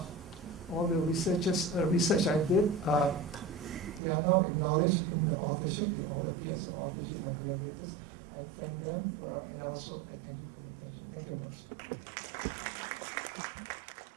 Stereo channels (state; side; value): drops out; left; at 4.0 s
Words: all the research I did, they are now acknowledged in the authorship. They all appear as authorship, my collaborators. I thank them, and also I thank you for your attention. Thank you very much.